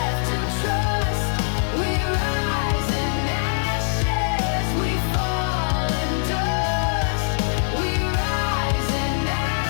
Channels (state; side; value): silent; right; digital silence